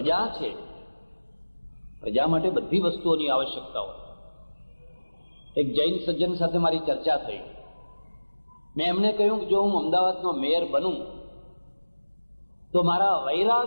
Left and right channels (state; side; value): inverted; both; correlation -1.00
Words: છે, પ્રજા માટે બધી વસ્તુઓની આવશ્યકતા હોય. એક જૈન સજ્જન સાથે મારી ચર્ચા થઈ. મેં એમને કહ્યું કે જો હું અમદાવાદનો મેયર બનું તો મારા